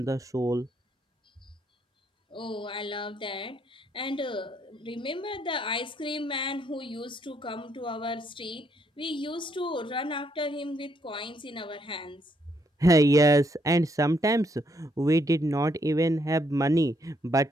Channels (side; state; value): both; normal; correlation 0.73